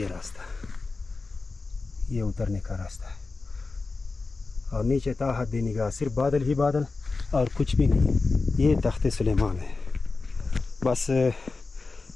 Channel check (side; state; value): right; quieter; 3.9 dB